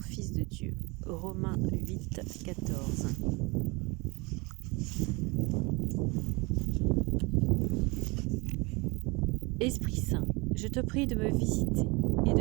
de Dieu. Romains 8, 14. Esprit Saint, je te prie de me visiter et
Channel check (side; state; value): left; quieter; 26.6 dB